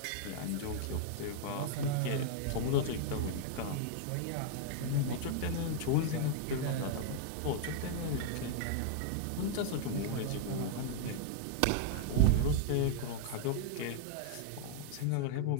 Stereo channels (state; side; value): different; both; correlation -0.01